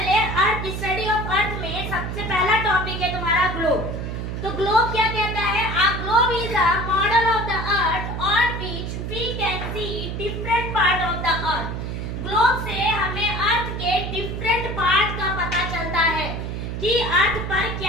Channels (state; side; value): noise; right; hum, 5 dB below the sound